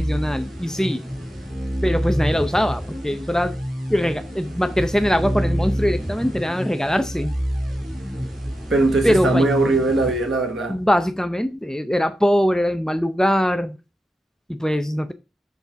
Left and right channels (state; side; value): normal; both; correlation 0.91